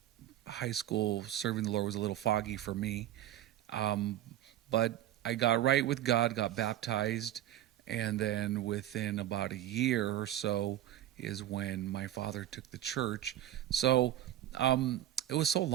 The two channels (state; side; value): quieter; left; 12.8 dB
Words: High school serving the Lord was a little foggy for me. But I got right with God, got baptized, and then within about a year or so is when my father took the church. So it was so